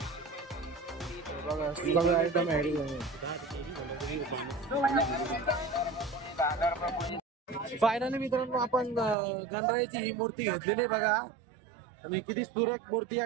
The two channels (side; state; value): left; drops out; at 9.2 s